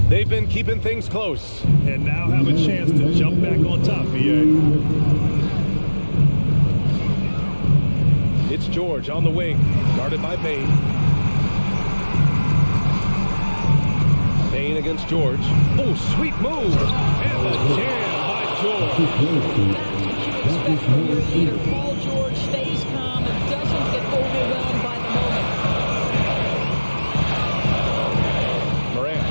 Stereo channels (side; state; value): both; inverted; correlation -1.00